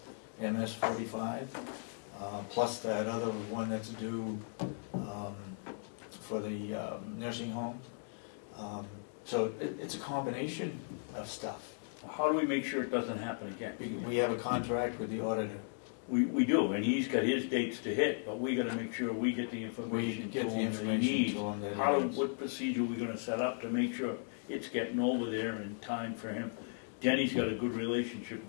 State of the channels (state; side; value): silent; right; digital silence